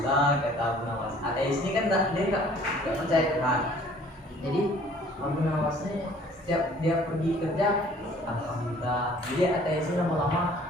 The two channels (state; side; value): normal; both; correlation 0.54